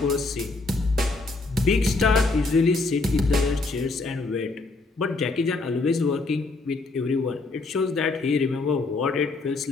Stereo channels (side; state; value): right; quieter; 3.5 dB